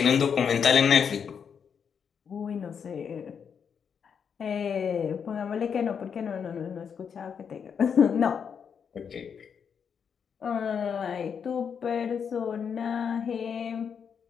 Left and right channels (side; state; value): right; quieter; 7.0 dB